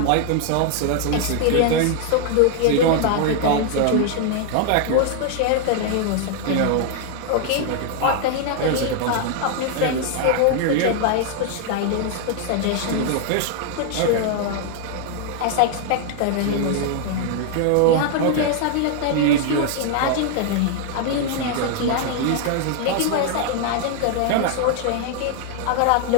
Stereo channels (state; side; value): different; both; correlation 0.00